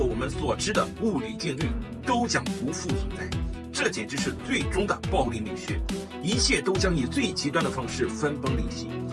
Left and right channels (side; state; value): both; identical; correlation 1.00